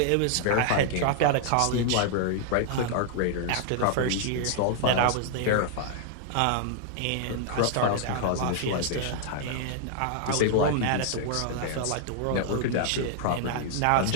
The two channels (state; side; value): different; both; correlation -0.01